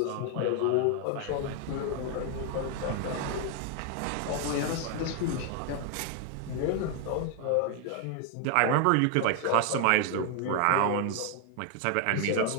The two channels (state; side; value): different; both; correlation 0.00